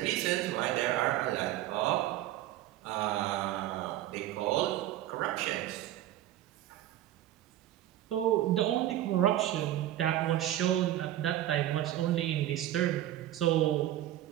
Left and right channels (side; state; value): left; quieter; 13.4 dB